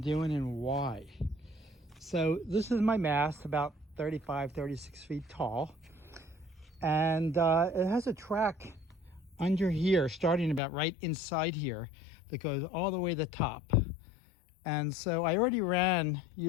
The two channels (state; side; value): drops out; right; at 10.6 s